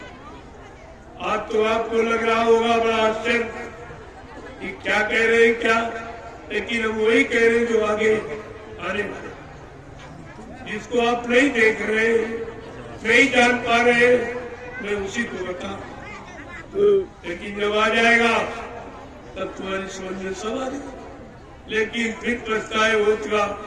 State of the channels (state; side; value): identical; both; correlation 1.00